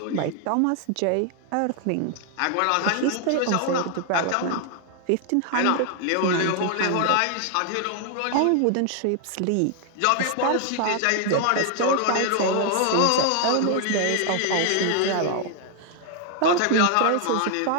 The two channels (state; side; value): different; both; correlation 0.00